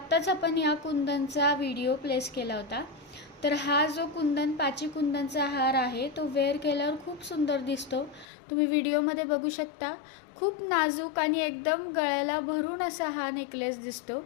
आपण ह्या कुंदनचा व्हिडिओ प्लेस केला होता। तर हा जो कुंदन पाची कुंदनचा हार आहे तो वेअर केल्यावर खूप सुंदर दिसतो। तुम्ही व्हिडिओमध्ये बघू शकता। खूप नाजूक आणि एकदम गळ्याला भरून असा हा नेकलेस दिसतो।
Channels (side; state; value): right; drops out; at 8.2 s